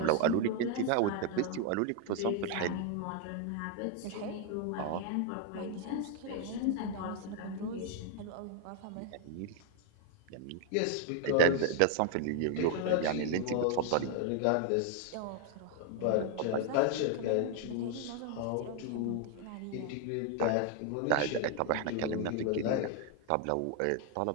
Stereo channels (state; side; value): different; both; correlation 0.01